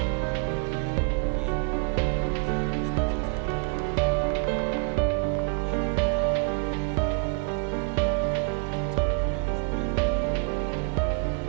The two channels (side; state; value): left; quieter; 33.1 dB